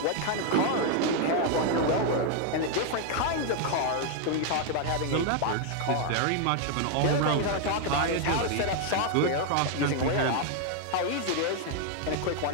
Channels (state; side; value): different; both; correlation 0.00